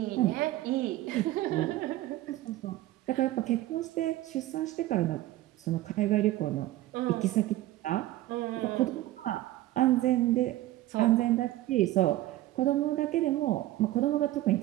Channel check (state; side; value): quieter; left; 15.7 dB